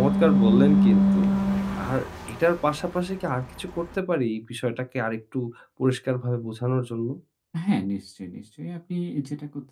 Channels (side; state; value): both; identical; correlation 1.00